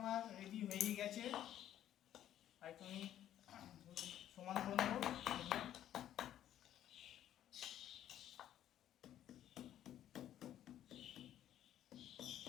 রেডি হয়ে গেছে। আর তুমি সমান করে নেবো।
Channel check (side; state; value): right; quieter; 11.5 dB